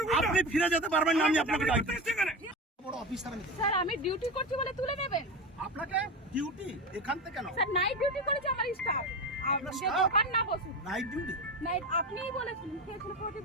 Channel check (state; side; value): normal; both; correlation 0.22